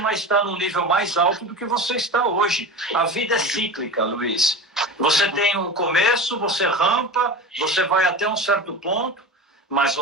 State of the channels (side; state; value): both; normal; correlation 0.29